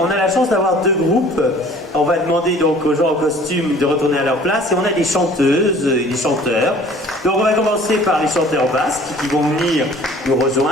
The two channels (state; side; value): normal; both; correlation 0.50